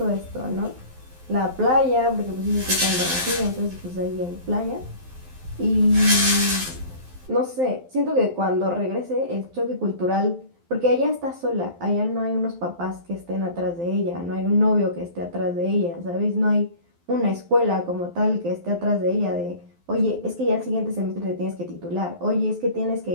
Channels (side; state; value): left; late; 12 ms